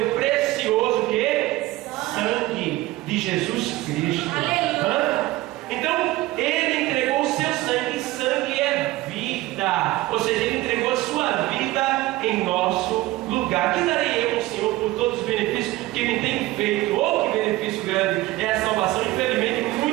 precioso que? Sangue de Jesus Cristo. Então ele entregou o seu sangue, e sangue é vida, ou seja, ele entregou a sua vida em nosso lugar. Que darei eu ao Senhor por todos os benefícios que me tem feito? Oh, que benefício grande é a salvação. Infelizmente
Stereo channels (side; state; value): left; quieter; 18.1 dB